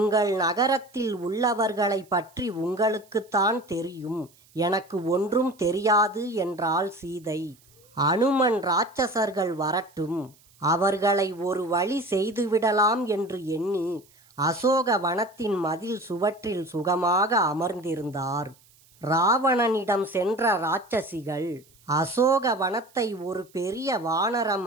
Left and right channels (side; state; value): right; noise; hiss, 30 dB below the sound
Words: நகரத்தில் உள்ளவர்களை பற்றி உங்களுக்குத்தான் தெரியும், எனக்கு ஒன்றும் தெரியாது என்றாள் சீதை. அனுமன் இராட்சசர்கள் வரட்டும், அவர்களை ஒரு வழி செய்துவிடலாம் என்று எண்ணி அசோக வனத்தின் மதில் சுவற்றில் சுகமாக அமர்ந்திருந்தார். ராவணனிடம் சென்ற இராட்சசிகள் அசோக வனத்தை ஒரு பெரிய வானரம்